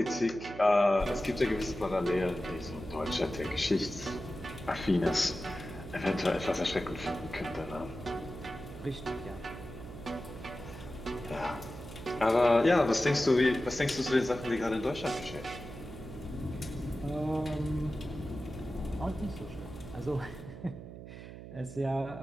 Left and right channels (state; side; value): noise; right; hum, 12 dB below the sound